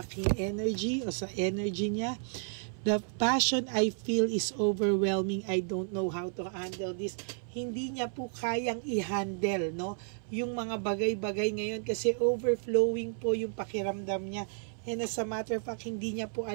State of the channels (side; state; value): left; silent; 56 dB below the other